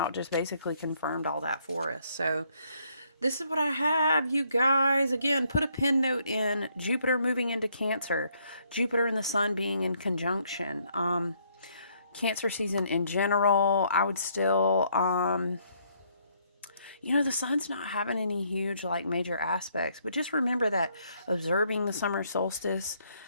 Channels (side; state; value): both; inverted; correlation -0.69